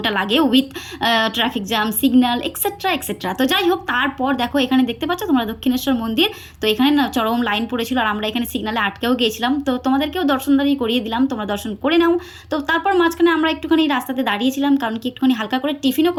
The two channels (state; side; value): identical; both; correlation 1.00